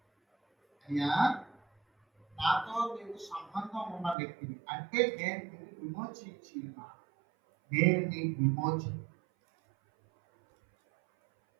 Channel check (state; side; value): drops out; left; at 4.2 s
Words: అయ్యా నాతో నీకు సంబంధం ఉన్న వ్యక్తిని అంటే నేను నిన్ను విమోచించి ఉన్నాను. నేను నీకు విమోచన,